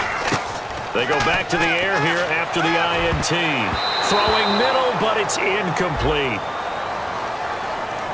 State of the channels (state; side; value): identical; both; correlation 1.00